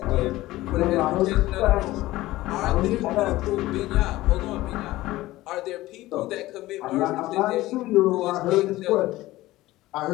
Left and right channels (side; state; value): right; quieter; 17.3 dB